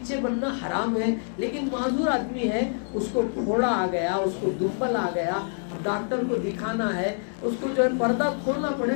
بننا حرام ہے. لیکن معذور آدمی ہے، اس کو پھوڑا آ گیا، اس کو دمبل آ گیا، ڈاکٹر کو دکھانا ہے، اس کو جو ہے پردہ کھولنا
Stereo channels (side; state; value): right; silent; digital silence